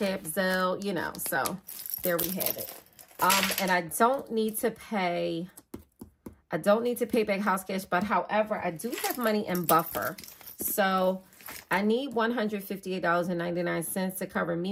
App, Zelle, you know, so there we have it. And I don't need to pay back house cash, but however, I do have money in buffer. So I need $158.99 to cover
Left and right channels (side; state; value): both; identical; correlation 1.00